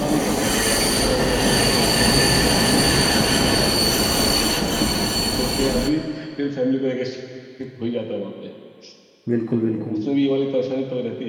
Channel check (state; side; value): identical; both; correlation 1.00